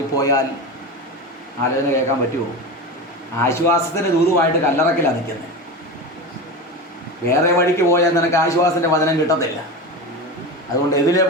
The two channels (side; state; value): both; normal; correlation 0.24